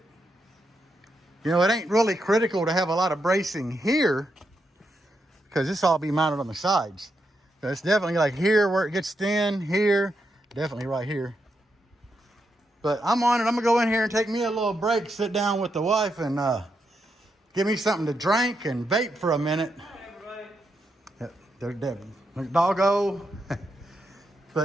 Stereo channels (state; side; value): normal; both; correlation 0.83